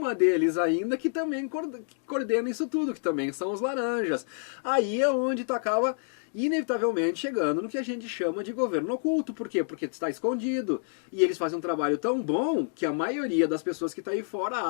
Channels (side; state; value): right; silent; digital silence